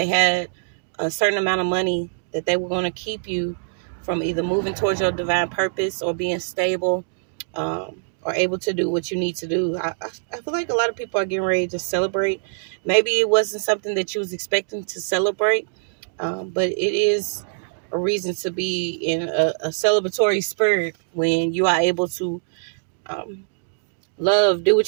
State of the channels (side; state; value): left; silent; digital silence